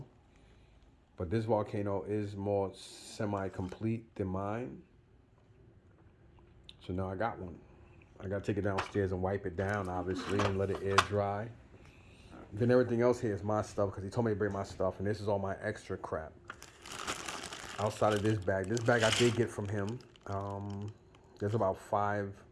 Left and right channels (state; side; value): identical; both; correlation 1.00